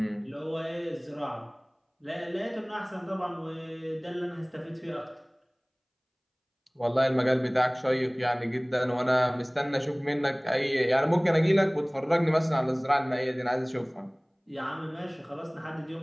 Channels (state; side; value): identical; both; correlation 1.00